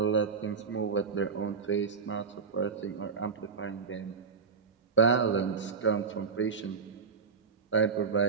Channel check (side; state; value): left; quieter; 5.5 dB